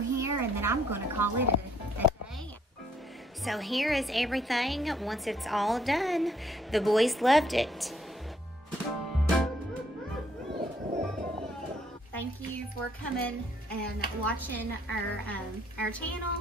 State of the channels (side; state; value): both; normal; correlation 0.67